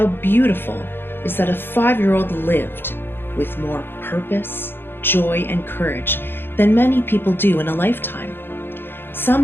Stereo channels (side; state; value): right; late; 0.10 ms